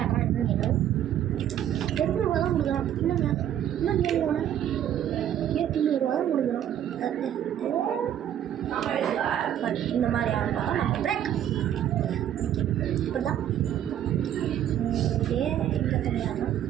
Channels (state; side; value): quieter; left; 10.7 dB